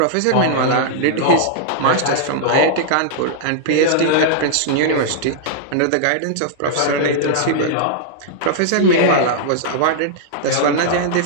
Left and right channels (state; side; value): different; both; correlation -0.01